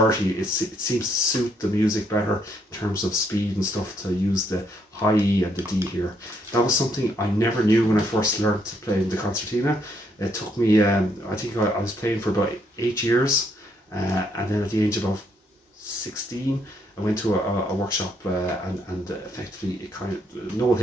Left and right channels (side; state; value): both; normal; correlation 0.72